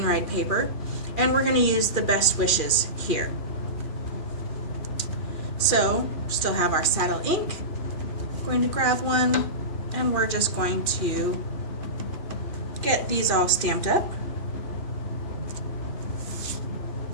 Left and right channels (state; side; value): late; right; 2.4 ms